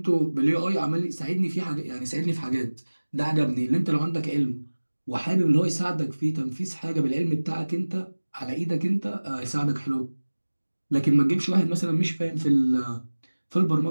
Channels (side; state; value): both; inverted; correlation -1.00